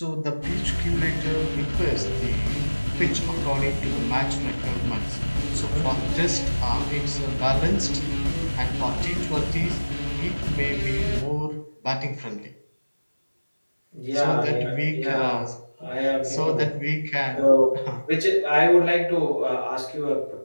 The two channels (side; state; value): both; inverted; correlation -1.00